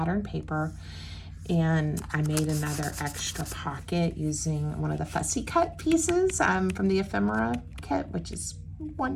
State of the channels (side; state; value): both; identical; correlation 1.00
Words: paper, and I made another extra pocket using one of the fussy cut pieces from the ephemera kit, which is